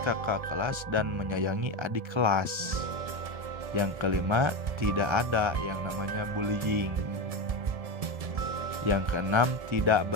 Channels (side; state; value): left; late; 1.3 ms